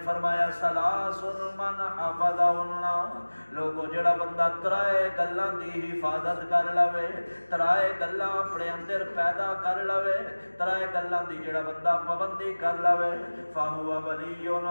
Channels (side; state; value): both; inverted; correlation -1.00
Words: فرمایا ثلاث من حفظہن لوگو جڑا بندہ ترائے گلاں دی حفاظت کر لوے ترائے گلاں اپنے اندر پیدا کر لوے ترائے گلاں دی جڑا بندہ پابندی کر لوے فہو ولی